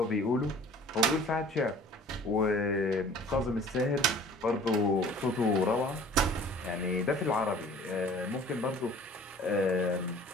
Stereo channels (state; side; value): normal; both; correlation 0.49